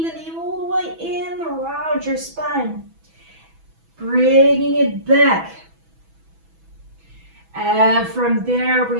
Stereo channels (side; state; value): left; late; 6.1 ms